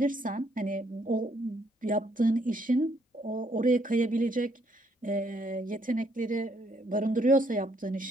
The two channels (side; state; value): both; normal; correlation 0.70